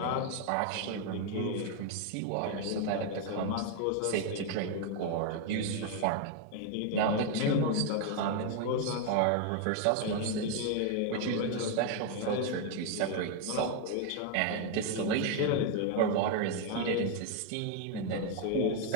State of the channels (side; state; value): both; different; correlation 0.01